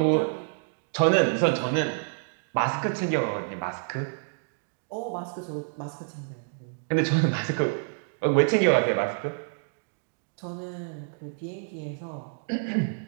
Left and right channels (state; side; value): silent; left; digital silence